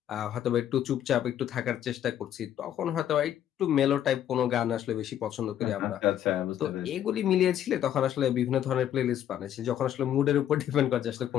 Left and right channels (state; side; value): quieter; right; 10.7 dB